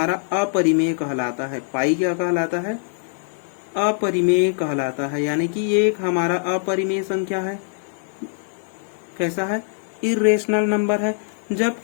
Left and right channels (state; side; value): silent; right; digital silence